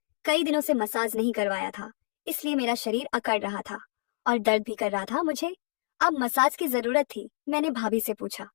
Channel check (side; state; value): right; silent; digital silence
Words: कई दिनों से मसाज नहीं करवाया था, इसलिए मेरा शरीर अकड़ रहा था और दर्द भी कर रहा था मुझे। अब मसाज की जरूरत थी। मैंने भाभी से पूछा,